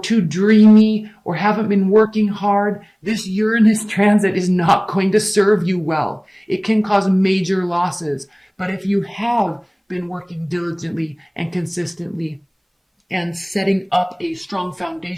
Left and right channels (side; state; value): both; identical; correlation 1.00